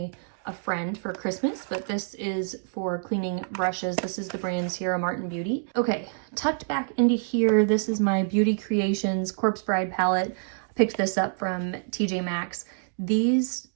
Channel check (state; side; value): silent; left; digital silence